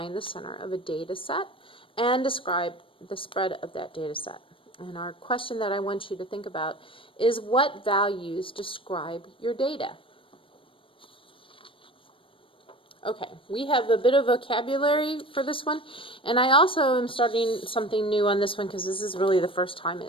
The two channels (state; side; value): late; right; 0.25 ms